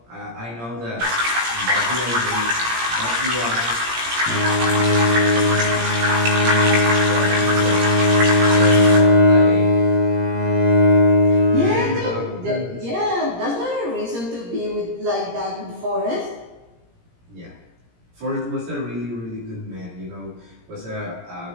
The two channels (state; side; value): late; left; 17 ms